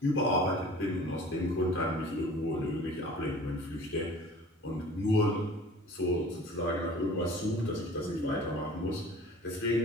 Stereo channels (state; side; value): normal; both; correlation 0.45